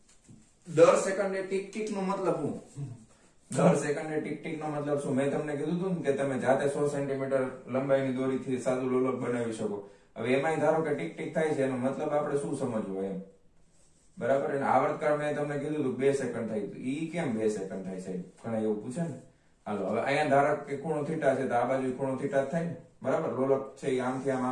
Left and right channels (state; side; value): identical; both; correlation 1.00